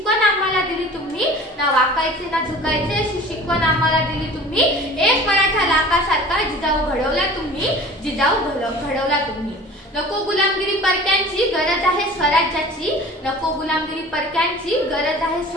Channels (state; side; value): normal; both; correlation 0.42